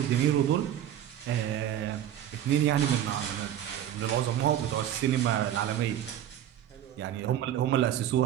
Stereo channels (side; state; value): left; quieter; 11.1 dB